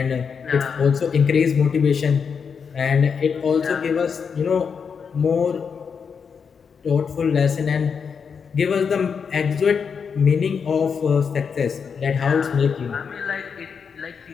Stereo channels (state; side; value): quieter; right; 6.2 dB